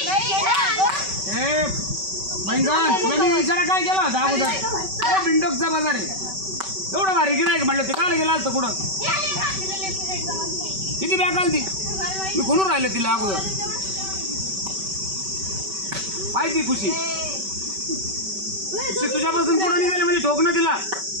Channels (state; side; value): late; left; 5.2 ms